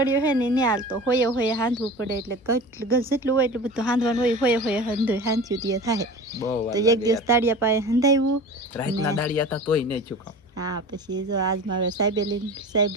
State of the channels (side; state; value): both; normal; correlation 0.36